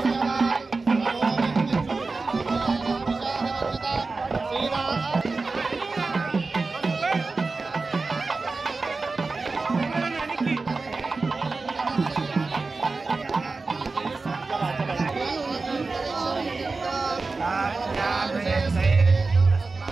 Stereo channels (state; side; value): quieter; left; 3.9 dB